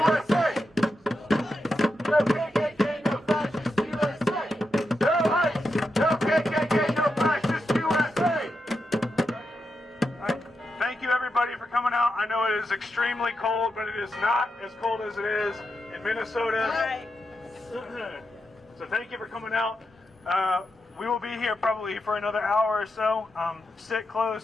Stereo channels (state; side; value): normal; both; correlation 0.86